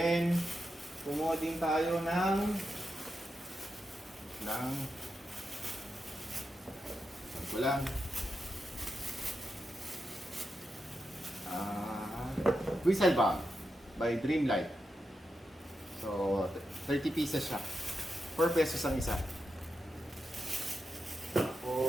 kumuha din tayo ng ko lang. Whistle Bag by Dreamlight. So, 30 pieces siya. 4 pesos ang isa.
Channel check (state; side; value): normal; both; correlation 0.87